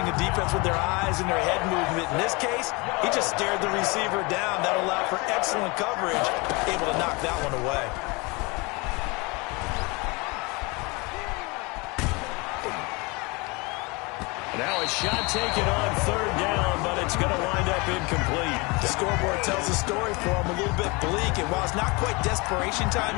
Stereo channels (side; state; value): right; quieter; 27.0 dB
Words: the defense with their eyes and their head movement. In this case, he just stared the receiver down. That allowed for excellent coverage, able to knock that one away. Now a shot taken on third down, but it's going to wind up incomplete. The scoreboard tells a story for him, a little bit bleak, and while it's not quite desperation time